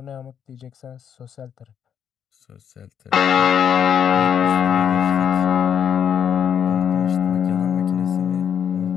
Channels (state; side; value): quieter; right; 8.4 dB